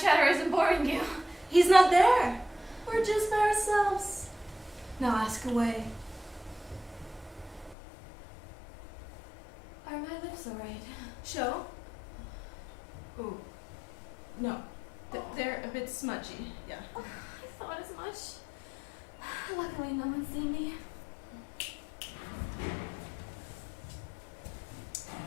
chatter isn't boring you? He's not there. We're just by ourselves. Now ask away. Are my lips alright? Show? Ooh. No. They're a bit smudgy. Yeah. Oh, I thought as much. Luckily, no one's seen me.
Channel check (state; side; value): drops out; right; at 7.8 s